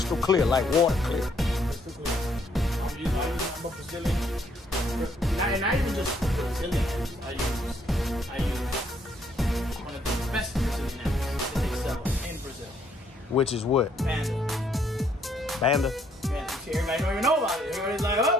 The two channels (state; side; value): normal; both; correlation 0.69